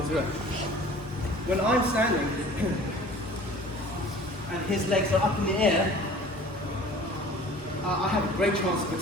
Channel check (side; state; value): both; normal; correlation 0.46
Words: around. When I'm standing and his legs are up in the air, I have a great chance of